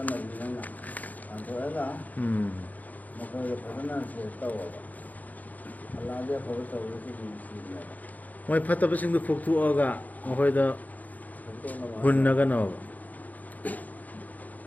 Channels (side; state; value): right; late; 0.079 ms